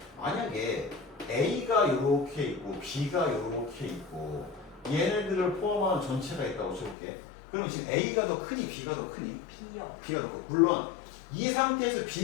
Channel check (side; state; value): right; drops out; at 7.0 s